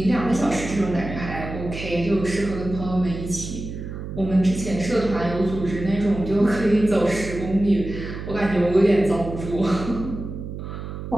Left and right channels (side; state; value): right; noise; hum, 8 dB below the sound